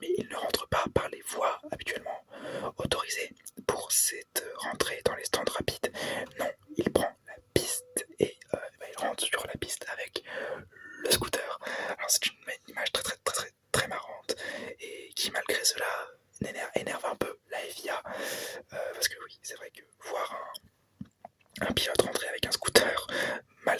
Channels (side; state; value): both; identical; correlation 1.00